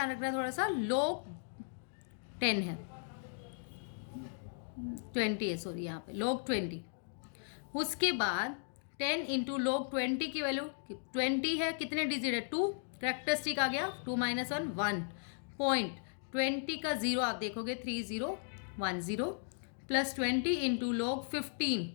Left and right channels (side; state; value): right; silent; digital silence